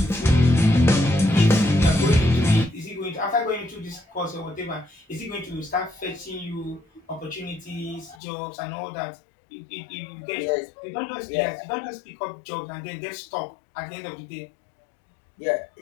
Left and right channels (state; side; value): drops out; right; at 8.2 s